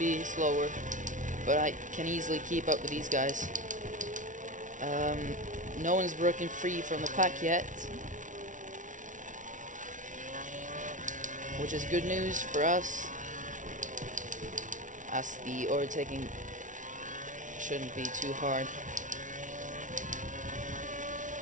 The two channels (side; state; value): left; late; 0.37 ms